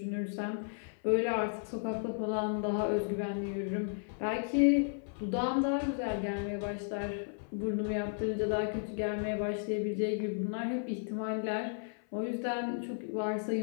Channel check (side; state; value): right; silent; 55 dB below the other